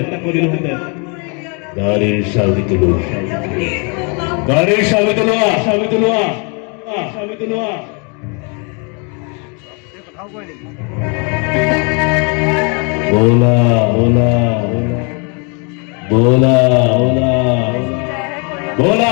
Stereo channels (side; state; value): right; quieter; 34.7 dB